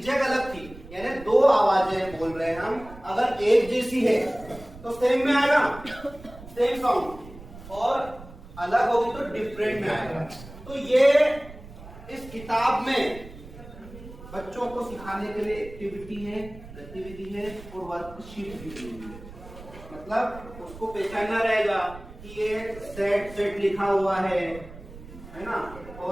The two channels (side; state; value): right; noise; rumble, 16 dB below the sound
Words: जैग अलग थी, यानी 2 आवाजें बोल रहे हैं हम। अगर एक जैसी है तो सेम में आएगा, सेम साउंड, और अलग होगी तो डिफरेंट में आएगा। तो ये इस किताब में बच्चों को सिखाने के लिए एक्टिविटी है, गतिविधि है और वर्कशीट भी दी हुई है। मतलब उसको पहचानना रहेगा कि ये सेट सेट लिखा हुआ है ना,